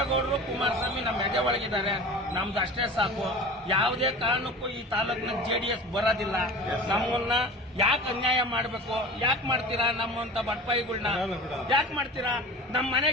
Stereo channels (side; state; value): both; normal; correlation 0.36